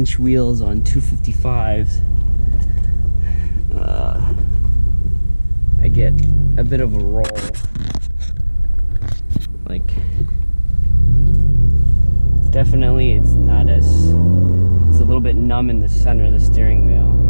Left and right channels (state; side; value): inverted; both; correlation -1.00